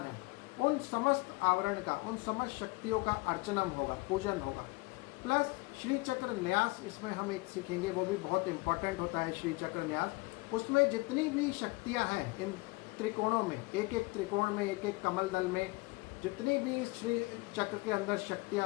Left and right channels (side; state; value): right; quieter; 24.7 dB